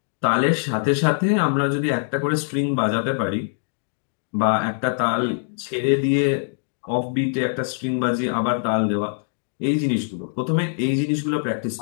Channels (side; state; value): right; silent; digital silence